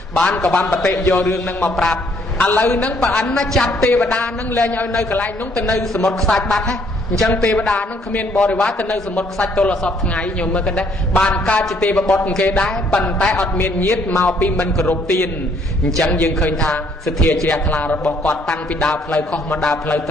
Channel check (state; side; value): normal; both; correlation 0.66